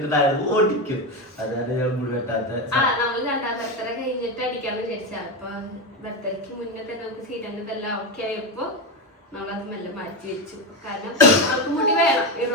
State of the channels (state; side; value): normal; both; correlation 0.14